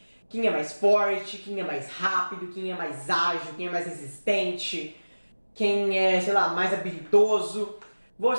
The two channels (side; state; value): both; inverted; correlation -1.00